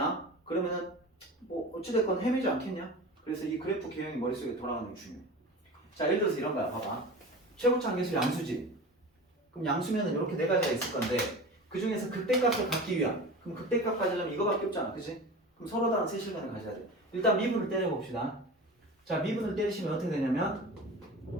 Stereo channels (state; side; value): normal; both; correlation 0.33